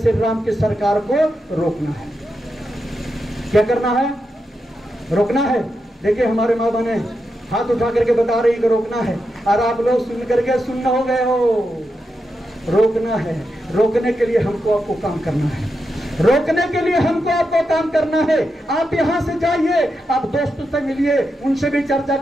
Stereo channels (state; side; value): normal; both; correlation 0.86